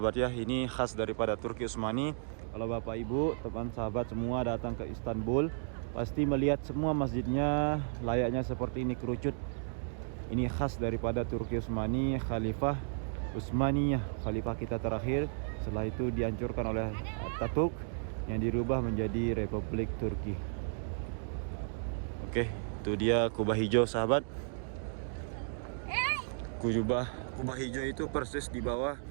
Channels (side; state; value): left; silent; digital silence